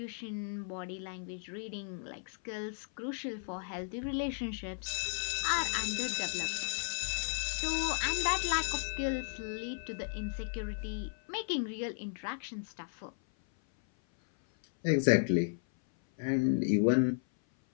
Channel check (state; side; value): silent; right; 55 dB below the other